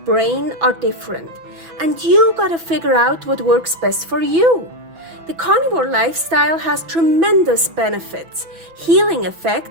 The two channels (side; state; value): left; late; 6.0 ms